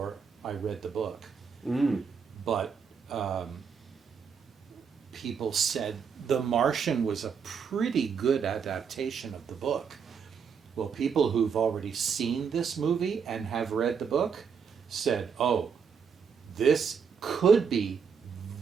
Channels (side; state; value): left; quieter; 6.4 dB